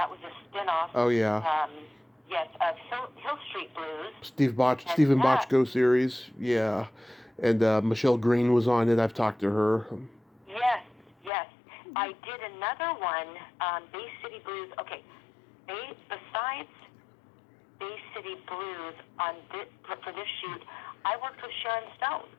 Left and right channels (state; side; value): drops out; right; at 11.3 s